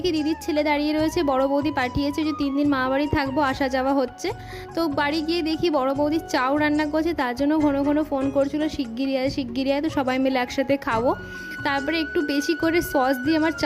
দিদির ছেলে দাঁড়িয়ে রয়েছে, বড় বৌদি পাঠিয়েছে যে 3 দিন মামা বাড়ি থাকবো, আসা যাওয়া হচ্ছে। তো বাড়ি গিয়ে দেখি বড় বৌদি চাউ রান্না করছে, তার জন্য ঘন ঘন ফোন করছিল শিগগিরই আয় শিগগিরই আয়, তো সবাই মিলে একসাথে খাবো। তারপরে একটু বেশি করে সস দিয়ে আমার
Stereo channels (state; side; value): identical; both; correlation 1.00